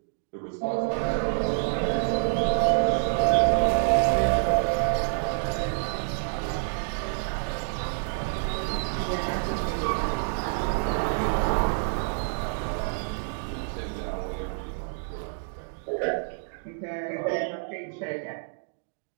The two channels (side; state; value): left; silent; digital silence